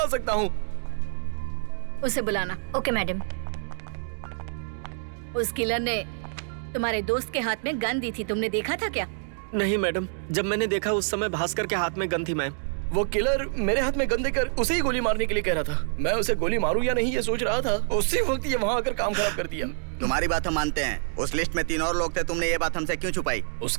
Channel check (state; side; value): silent; left; digital silence